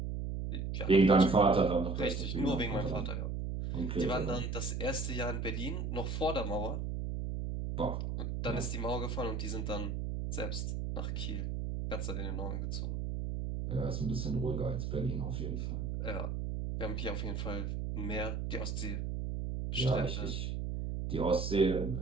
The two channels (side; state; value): right; noise; hum, 2 dB below the sound